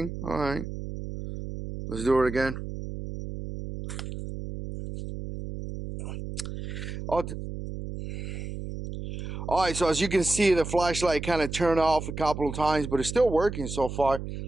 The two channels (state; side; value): noise; right; hum, 7 dB below the sound